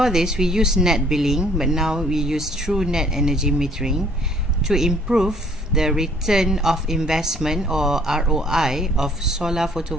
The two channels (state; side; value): normal; both; correlation 0.59